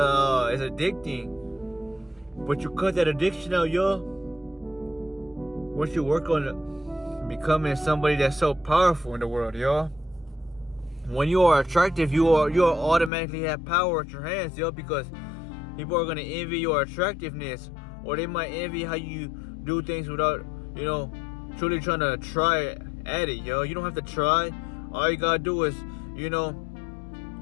But you cut that addiction out, y'all. Once you work on becoming somebody that's so powerful in the world, y'all. When you are attractive, you automatically have power at your hands, y'all, because people are gonna envy your attractiveness, or they might envy how you do things without, truly trying to try at it, yo. You don't have to try. All you gotta do is,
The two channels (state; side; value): drops out; right; at 13.1 s